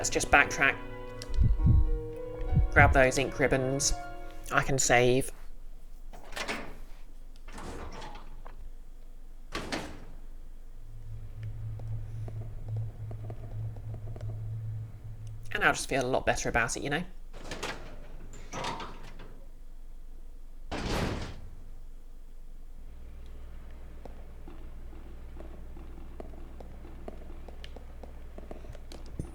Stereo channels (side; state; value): both; identical; correlation 1.00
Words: just backtrack. Grab those ink ribbons. I can save. And I'll just feel a lot better about it, you know?